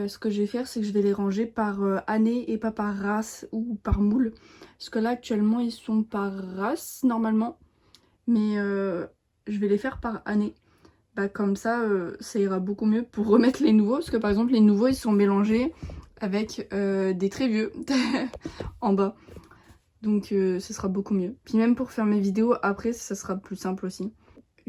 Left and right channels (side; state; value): both; identical; correlation 1.00